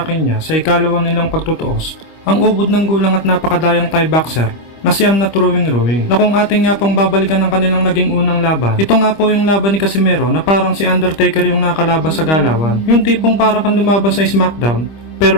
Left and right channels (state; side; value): late; right; 25 ms